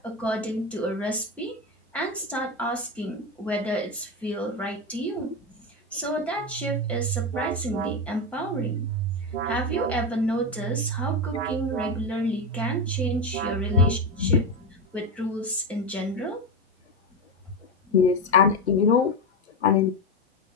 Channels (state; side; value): normal; both; correlation 0.14